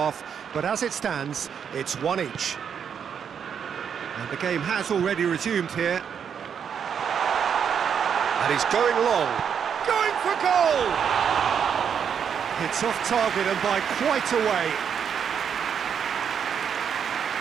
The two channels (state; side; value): quieter; left; 7.6 dB